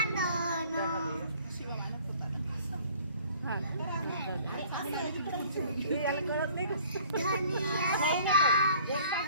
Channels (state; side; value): inverted; both; correlation -0.53